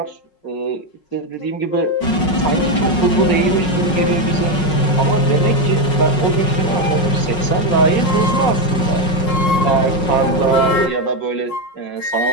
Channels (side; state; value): right; late; 5.5 ms